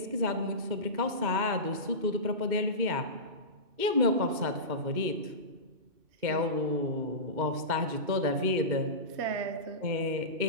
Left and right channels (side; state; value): left; late; 2.1 ms